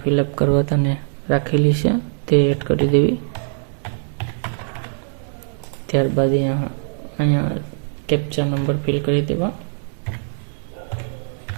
ફિલઅપ કરવા તને રાખેલી છે તે એડ કરી દેવી. ત્યારબાદ અહીંયા કેપ્ચા નંબર ફિલ કરી દેવા.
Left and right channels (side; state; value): left; silent; digital silence